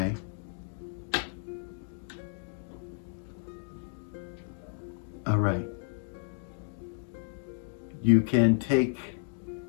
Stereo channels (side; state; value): right; silent; digital silence